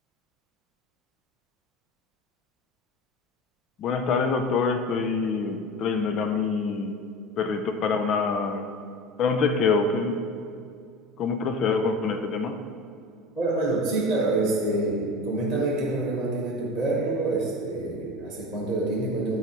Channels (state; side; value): normal; both; correlation 0.32